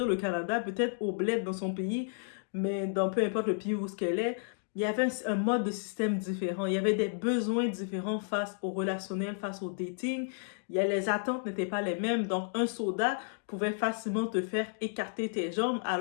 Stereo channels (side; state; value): right; silent; digital silence